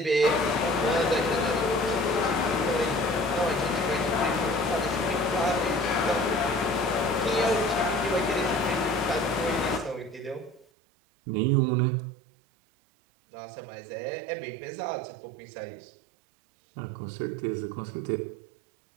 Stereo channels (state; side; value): drops out; left; at 10.7 s